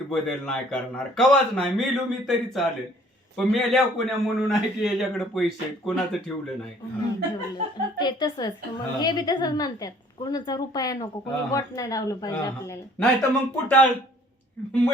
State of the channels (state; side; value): normal; both; correlation 0.56